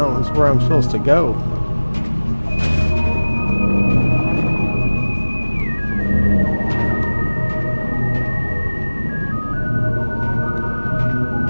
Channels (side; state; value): both; inverted; correlation -1.00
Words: is where I'm supposed to go.